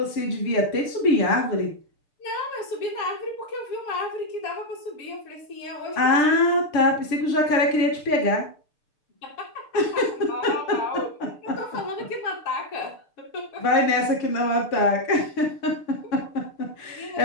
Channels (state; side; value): late; right; 6.7 ms